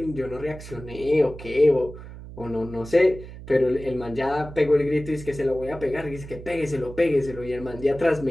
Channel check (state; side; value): noise; right; hum, 14 dB below the sound